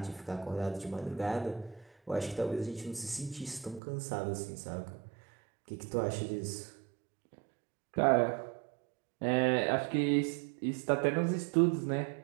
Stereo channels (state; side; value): drops out; left; at 3.8 s